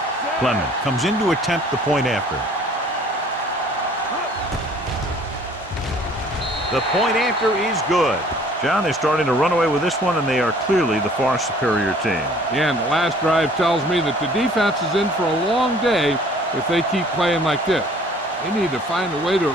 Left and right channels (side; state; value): both; normal; correlation 0.54